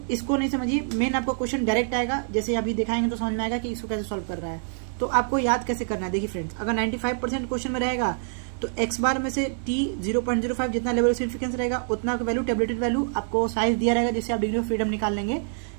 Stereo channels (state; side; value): silent; left; digital silence